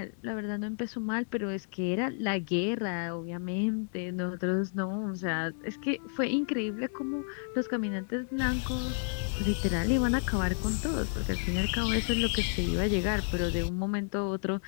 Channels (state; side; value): silent; right; 57 dB below the other